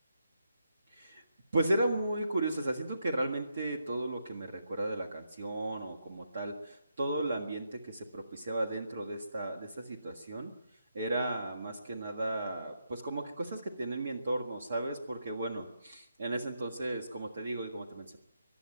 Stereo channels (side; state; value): both; inverted; correlation -0.82